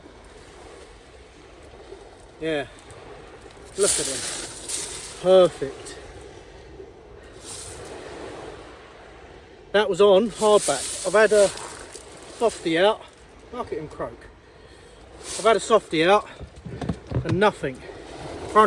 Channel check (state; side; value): identical; both; correlation 1.00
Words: Yeah. Look at him. Perfect. That was on hardback. I've had a softie out. Look at him croak. I've had a softie out and nothing.